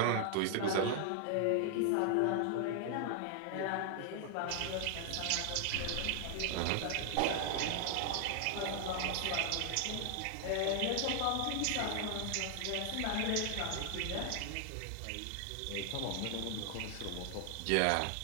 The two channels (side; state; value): both; different; correlation 0.00